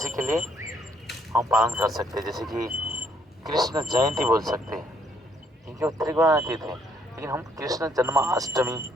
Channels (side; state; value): both; normal; correlation 0.68